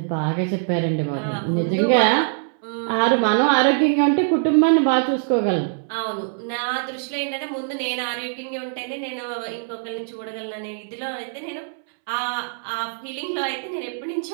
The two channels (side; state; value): left; silent; 63 dB below the other